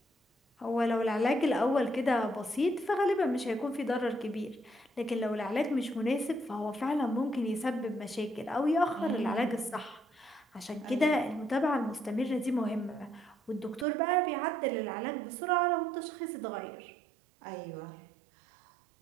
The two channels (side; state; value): left; drops out; at 13.9 s